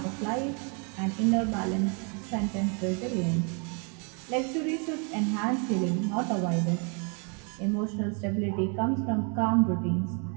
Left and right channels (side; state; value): left; quieter; 36.6 dB